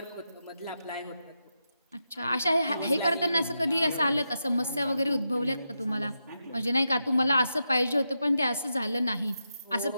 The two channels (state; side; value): inverted; both; correlation -0.87